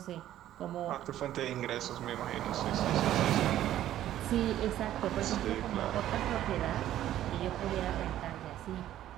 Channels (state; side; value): quieter; left; 12.6 dB